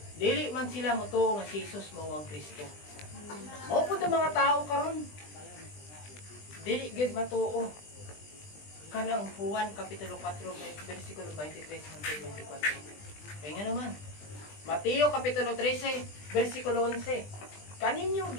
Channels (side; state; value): right; late; 20 ms